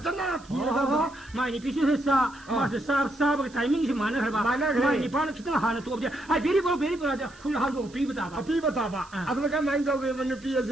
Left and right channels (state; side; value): noise; right; hiss, 25 dB below the sound